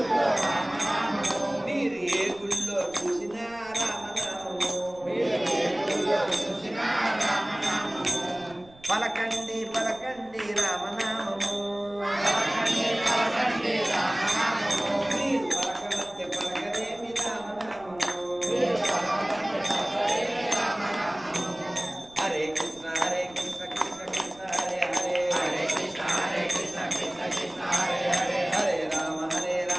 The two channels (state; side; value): noise; right; rumble, 25 dB below the sound